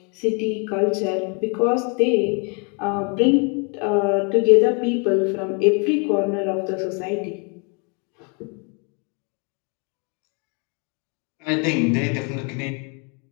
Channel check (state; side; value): quieter; right; 35.4 dB